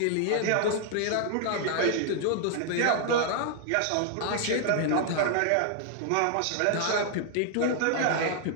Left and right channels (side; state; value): both; different; correlation 0.00